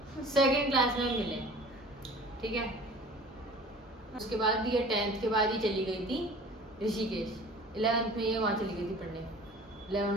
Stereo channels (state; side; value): normal; both; correlation 0.45